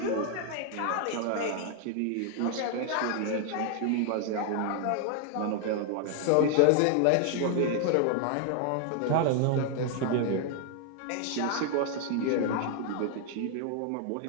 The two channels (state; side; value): different; both; correlation 0.00